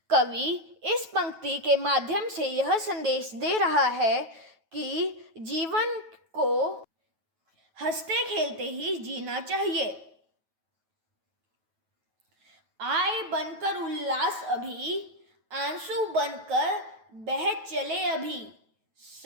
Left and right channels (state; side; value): late; left; 9.2 ms